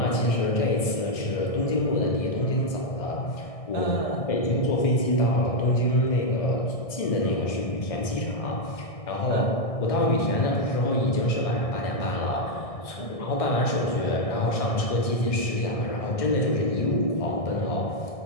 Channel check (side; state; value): right; late; 1.6 ms